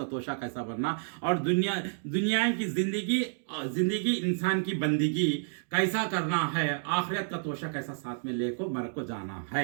तोशा कैसा बनना और दुनिया की ज़िंदगी इंसान की बंदगी कैसा करना है, आखिरत का तोशा कैसा साथ में लेको मर को जाना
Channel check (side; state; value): left; silent; digital silence